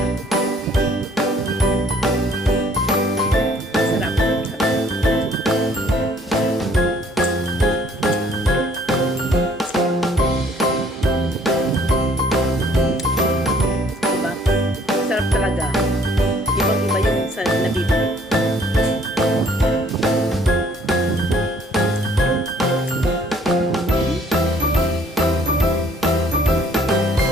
Sarap. Sarap talaga. Ibang-iba yung sa nabibili.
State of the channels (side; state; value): both; normal; correlation 0.60